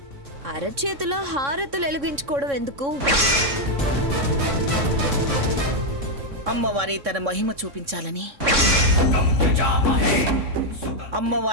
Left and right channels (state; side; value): late; left; 3.6 ms